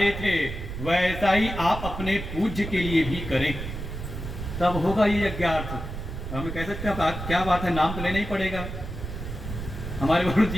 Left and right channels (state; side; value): noise; right; rumble, 7 dB below the sound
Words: थे वैसा ही आप अपने पूज्य के लिए भी करें, तब होगा ये यज्ञार्थ। हमें कह सकते हैं क्या बात है, नाम तो लेना ही पड़ेगा। हमारे गुरु